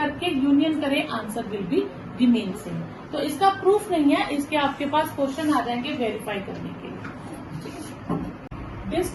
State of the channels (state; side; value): identical; both; correlation 1.00